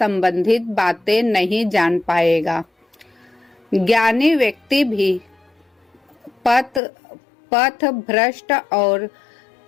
बातें नहीं जान पाएगा। ज्ञानी व्यक्ति भी पथ भ्रष्ट और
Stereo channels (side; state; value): right; drops out; at 6.8 s